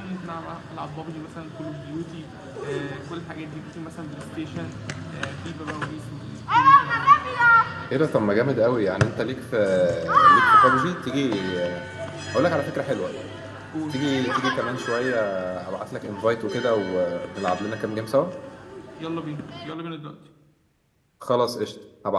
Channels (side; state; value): both; identical; correlation 1.00